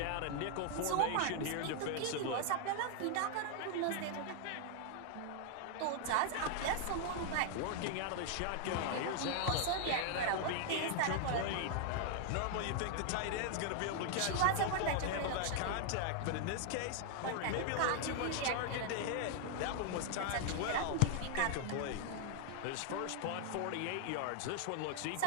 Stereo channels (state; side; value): different; both; correlation 0.00